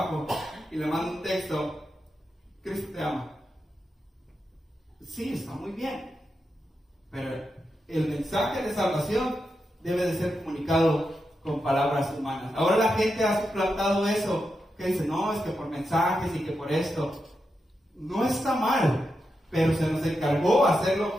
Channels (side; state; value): both; normal; correlation 0.87